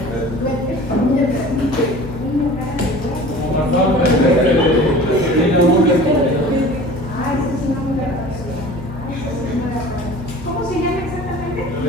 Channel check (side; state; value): both; normal; correlation 0.42